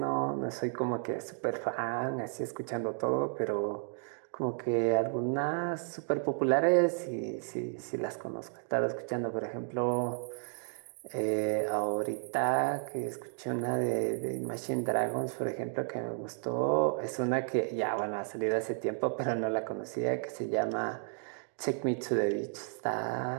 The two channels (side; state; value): left; silent; 56 dB below the other